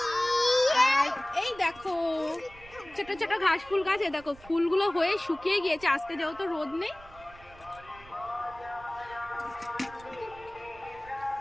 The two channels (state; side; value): noise; right; rumble, 22 dB below the sound